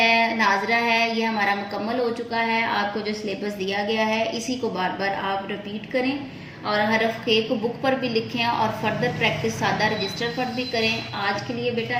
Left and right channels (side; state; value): both; identical; correlation 1.00